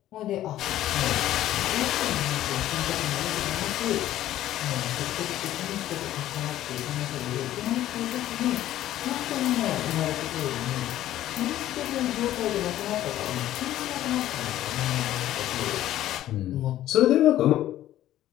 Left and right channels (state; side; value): quieter; right; 13.4 dB